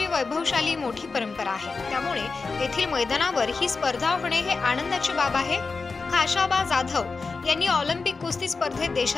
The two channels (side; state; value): right; quieter; 4.3 dB